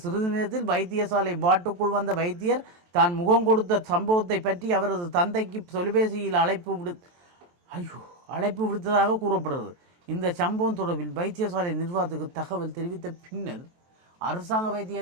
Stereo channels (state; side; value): late; left; 23 ms